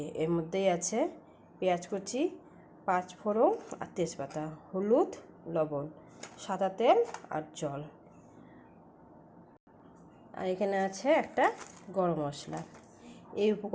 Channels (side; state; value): both; identical; correlation 1.00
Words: এর মধ্যেই আছে পেঁয়াজ কুচি, 5 ফোড়ন আর তেজপাতা, হলুদ, লবণ, সাদা তেল আর জল। আর এখানে আছে একটা গরম মশলা। এই